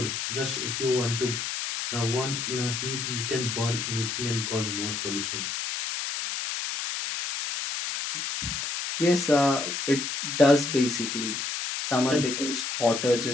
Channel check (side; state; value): left; noise; hiss, 3 dB below the sound